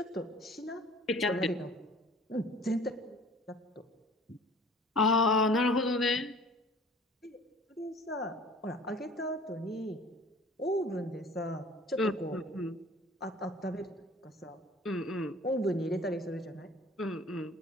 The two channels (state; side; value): normal; both; correlation 0.48